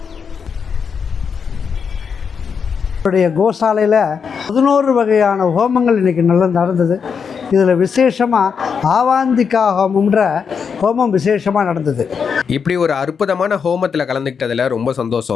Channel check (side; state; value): right; quieter; 6.3 dB